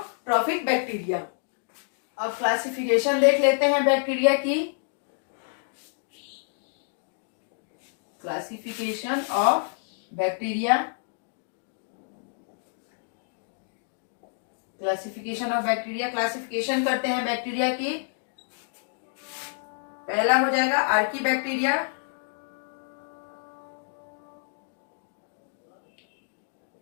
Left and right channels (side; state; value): right; silent; digital silence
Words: बैक्टीरिया। अब क्लासिफिकेशन देख लेते हैं बैक्टीरिया की। Classification of bacteria, classification of bacteria, classification करते हैं बैक्टीरिया की। पहला हो जाएगा archaebacteria,